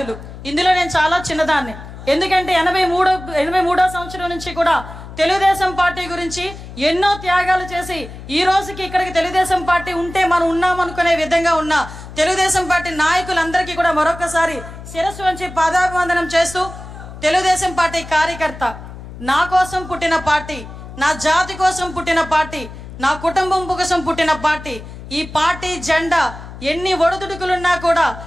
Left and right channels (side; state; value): left; noise; hum, 13 dB below the sound